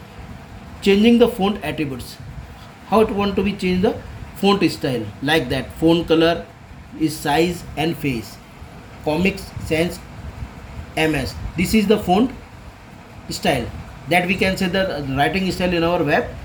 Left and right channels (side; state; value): both; identical; correlation 1.00